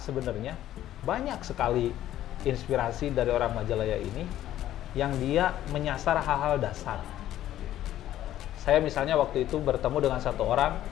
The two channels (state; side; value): quieter; right; 12.8 dB